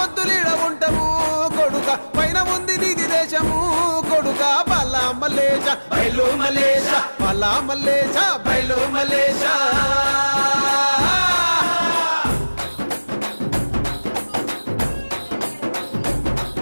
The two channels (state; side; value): inverted; both; correlation -1.00